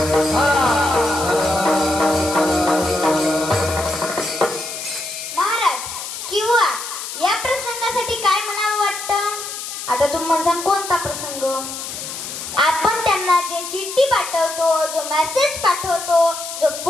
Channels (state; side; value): noise; left; hiss, 8 dB below the sound